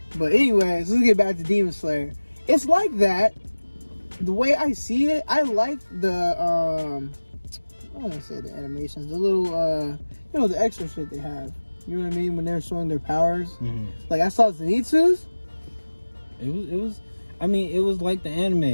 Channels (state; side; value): inverted; both; correlation -1.00